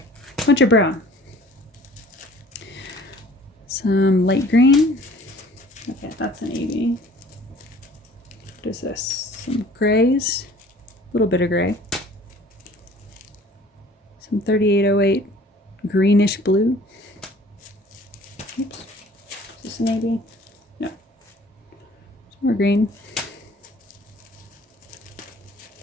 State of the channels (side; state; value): both; normal; correlation 0.51